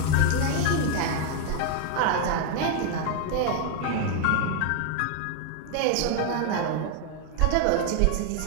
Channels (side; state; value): both; different; correlation 0.00